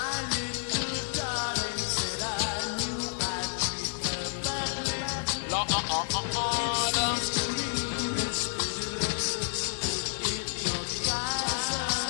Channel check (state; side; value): silent; right; 58 dB below the other